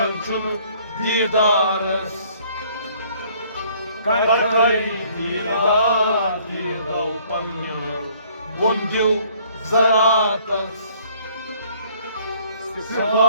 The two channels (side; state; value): both; inverted; correlation -0.60